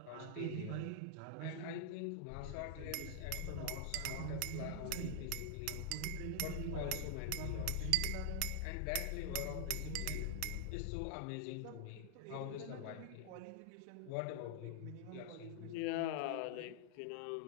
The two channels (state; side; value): different; both; correlation 0.00